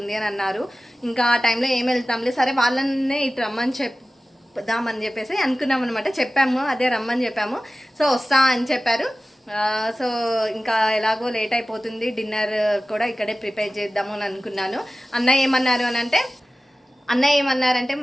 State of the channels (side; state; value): both; normal; correlation 0.96